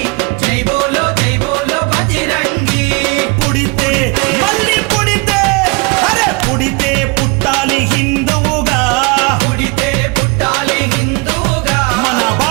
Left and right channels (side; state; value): left; quieter; 28.8 dB